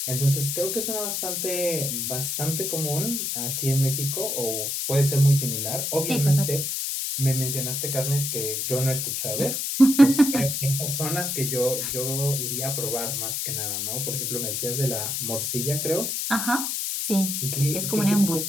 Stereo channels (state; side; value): noise; left; hiss, 1 dB below the sound